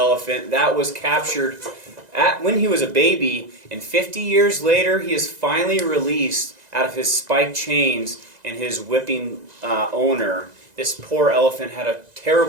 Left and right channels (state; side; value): late; left; 2.0 ms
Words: That was captured when he was a baby, and 50 years later he is finally released out of his spiked chains and his whipping owner. This poor elephant had a